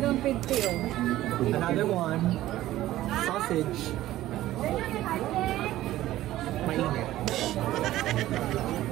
pigty oh. Another one. Sausage. Mainit.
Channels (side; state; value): left; quieter; 14.9 dB